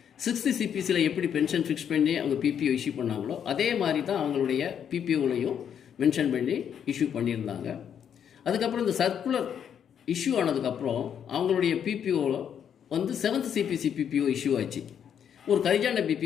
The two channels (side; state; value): right; quieter; 8.5 dB